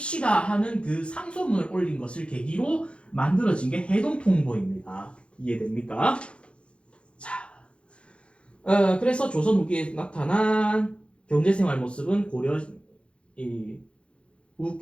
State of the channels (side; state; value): right; late; 0.058 ms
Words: 하는 그 상소문을 올린 것을 계기로 만들어진 게 해동통보입니다. 이해됩니까? 자, 그래서 조선 후기에 나타난 경제생활 모습은 고려